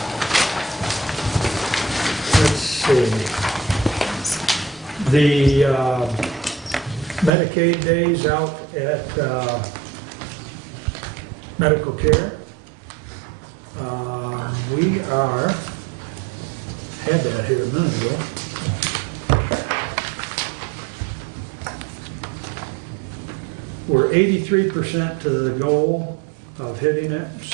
let's see. The Medicaid days out at medical care. We had that here a minute ago. We're 83% to the goal of hitting it,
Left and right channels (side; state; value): left; drops out; at 7.3 s